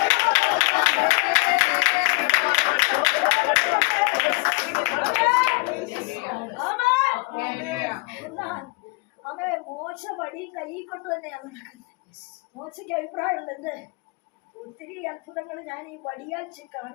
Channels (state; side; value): quieter; right; 28.8 dB